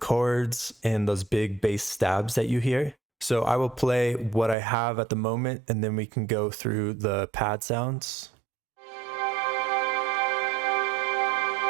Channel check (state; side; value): drops out; left; at 4.5 s